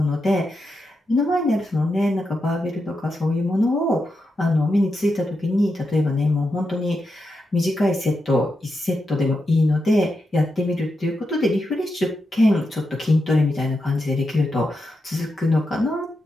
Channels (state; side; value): normal; both; correlation 0.86